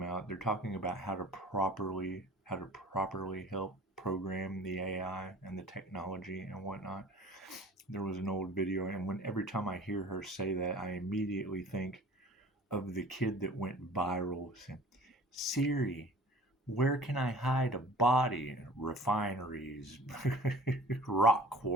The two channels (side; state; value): both; normal; correlation 0.46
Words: out? They're talking about how to properly help program the AI and the technology and whatnot. There was an old video, and every time I hear her say that, I immediately think of the kid that went viral saying, "Siri, where can I hide a body?" Refineries, rock